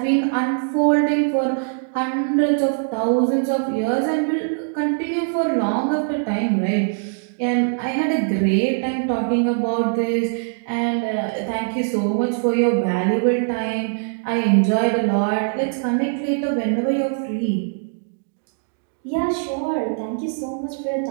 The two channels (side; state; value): left; silent; digital silence